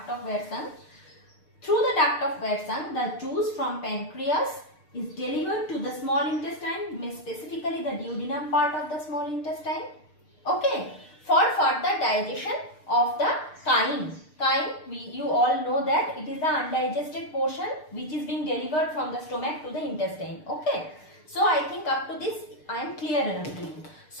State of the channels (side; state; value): right; late; 6.7 ms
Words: of Wersan. Through the duct of Wersan, the juice from pancreas is delivered to the small intestine, specifically the duodenum part of the small intestine. Okay, for further digestion of the chyme. Chyme, you all know that it is the undigested portion which is being delivered from the stomach to the intestine. Okay, so I think up to this I am clear enough to you.